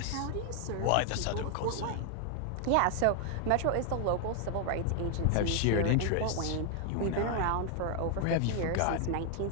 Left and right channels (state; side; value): different; both; correlation 0.00